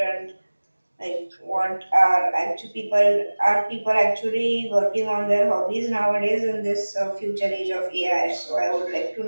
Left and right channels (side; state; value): both; inverted; correlation -1.00